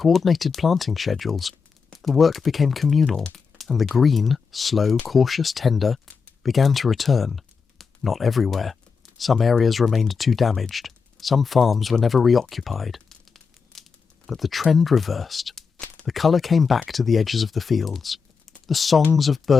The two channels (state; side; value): quieter; right; 5.4 dB